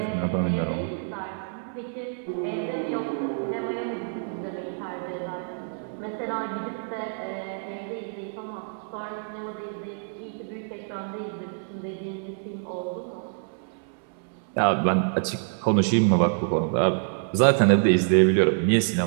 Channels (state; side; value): silent; left; 60 dB below the other